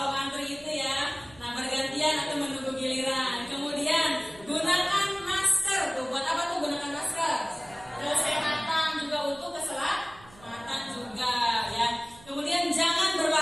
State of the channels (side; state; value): right; noise; hum, 23 dB below the sound